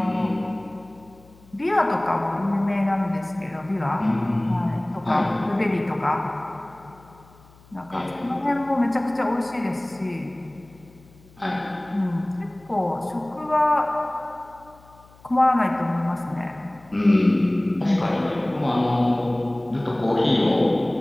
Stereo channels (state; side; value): noise; left; hum, 26 dB below the sound